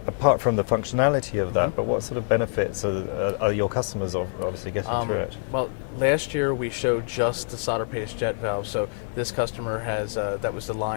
apart from the functionality of that, but what sort of benefits are your customers obviously getting through it? Well, last year we showed just the solder paste jet valve. So this customer has, that was the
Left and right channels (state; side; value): silent; right; digital silence